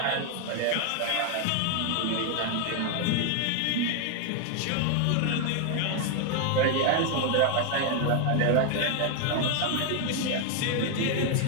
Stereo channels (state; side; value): different; both; correlation 0.00